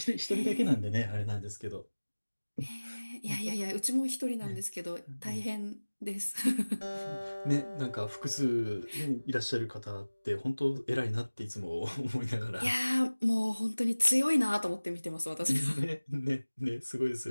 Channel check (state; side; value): inverted; both; correlation -1.00